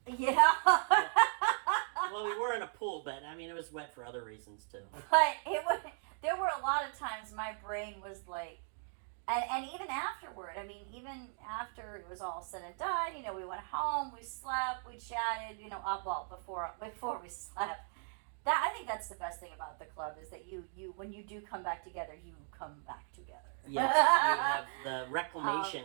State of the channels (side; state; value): left; silent; 53 dB below the other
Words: Yeah. Well, we were in a pool, but it was wet for other reasons too. But there were a lot of times my brain was like, and even afterward, even after it was all said and done, we went home, we slept, we chatted, before we slept. I think that's the best thing about the club is that you when you do come back together, you come back together. Yes, you have the